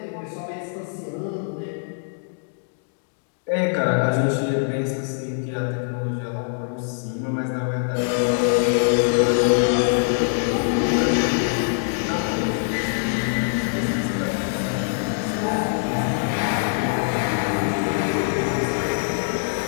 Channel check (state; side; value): silent; right; digital silence